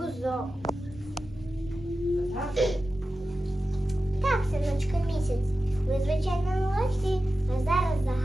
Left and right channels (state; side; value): normal; both; correlation 0.93